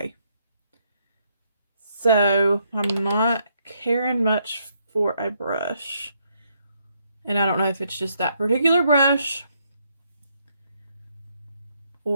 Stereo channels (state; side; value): inverted; both; correlation -0.75